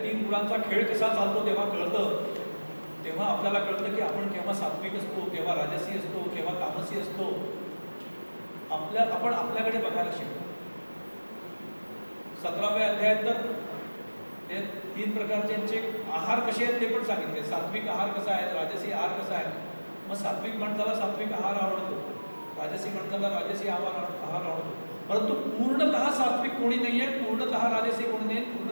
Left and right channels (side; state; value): both; inverted; correlation -1.00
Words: 3 गुणांचा खेळ कसा चालतो तेव्हा कळतं. तेव्हा आपल्याला कळतं की आपण केव्हा सात्विक असतो, केव्हा राजसी असतो, केव्हा तामसी असतो. आपण आपल्याकडे बघायला शिकतो. 17व्या अध्यायात तर ते 3 प्रकारचे आहार कसे आहेत ते पण सांगितले. सात्विक आहार कसा आहे, राजसी आहार कसा आहे. मग सात्विक माणसाला सात्विक आहार आवडतो, राजसी माणसाला राजसी आहार आवडतो. परंतु पूर्णतः सात्विक कोणी नाही आहे, पूर्णतः राजसी कोणी नाही,